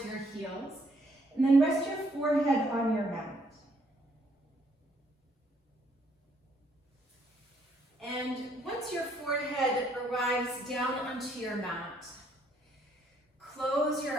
your heels. And then rest your forehead on your mat. And once your forehead arrives down onto your mat, close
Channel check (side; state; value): both; normal; correlation 0.68